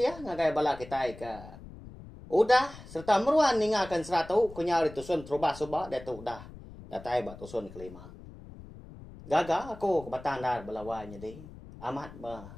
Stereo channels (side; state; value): left; noise; rumble, 16 dB below the sound